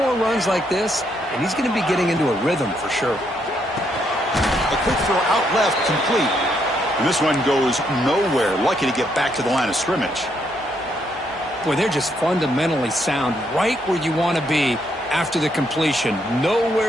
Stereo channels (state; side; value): normal; both; correlation 0.75